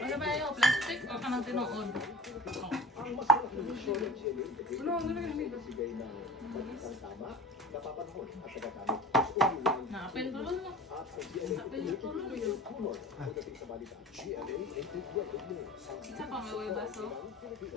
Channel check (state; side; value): normal; both; correlation 0.39